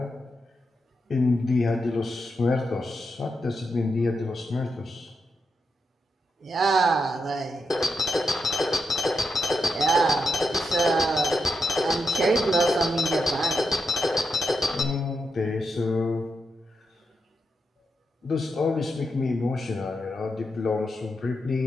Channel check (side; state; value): both; normal; correlation 0.84